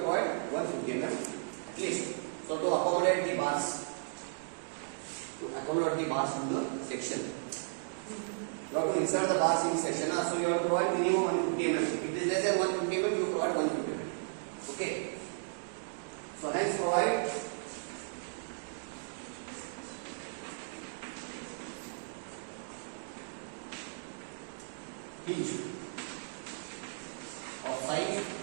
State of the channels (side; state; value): left; silent; digital silence